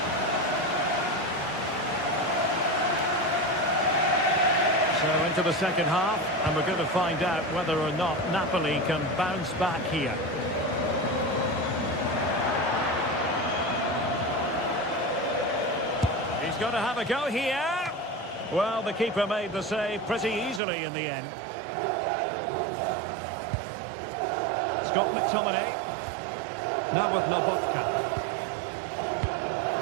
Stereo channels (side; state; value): left; drops out; at 20.6 s